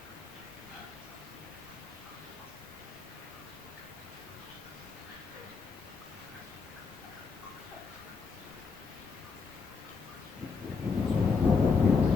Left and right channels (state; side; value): quieter; right; 4.9 dB